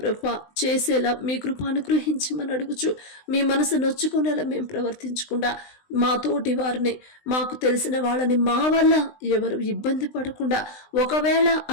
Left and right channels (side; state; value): right; late; 20 ms